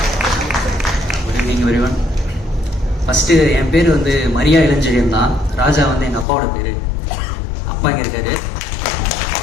Good evening everyone. First என் பேர் வந்து மரியா இளஞ்செழியன் தான். ராஜா வந்து எங்கள் அப்பாவோட பேர். அப்பா இங்கே இருக்காரு.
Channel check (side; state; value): right; drops out; at 6.2 s